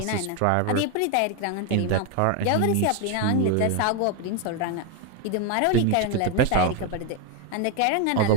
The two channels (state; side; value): different; both; correlation 0.01